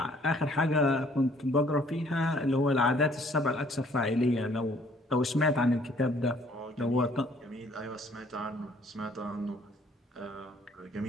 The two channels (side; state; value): both; normal; correlation 0.60